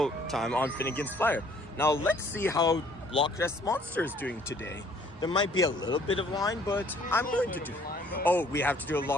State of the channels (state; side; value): normal; both; correlation 0.59